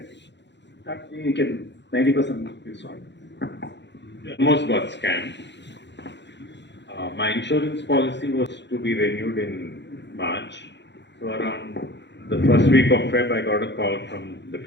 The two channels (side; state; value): right; late; 0.52 ms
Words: That you can 90% is solved. Almost got scammed. My insurance policy was to be renewed in March. So around the first week of Feb, I got a call from the